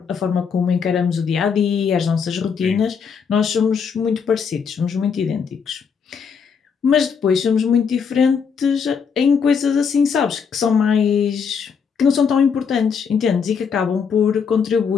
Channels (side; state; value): right; quieter; 6.3 dB